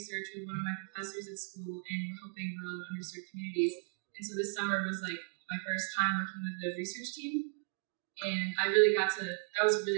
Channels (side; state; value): left; silent; 54 dB below the other